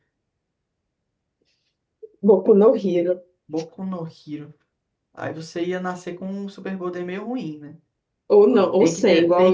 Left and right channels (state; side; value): identical; both; correlation 1.00